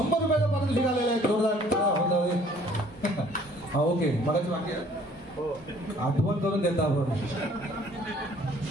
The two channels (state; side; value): normal; both; correlation 0.57